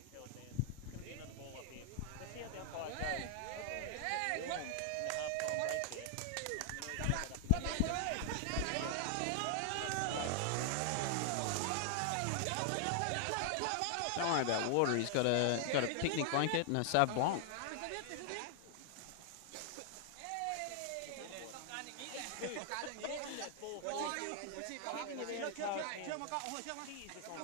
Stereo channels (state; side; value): different; both; correlation 0.00